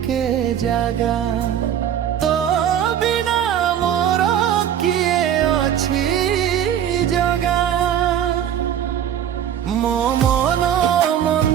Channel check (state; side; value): quieter; left; 9.9 dB